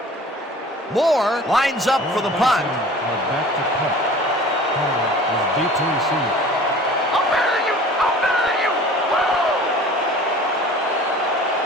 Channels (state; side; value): normal; both; correlation 0.45